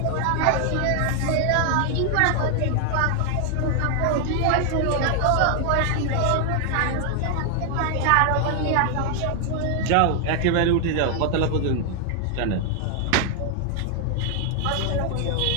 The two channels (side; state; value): both; different; correlation 0.00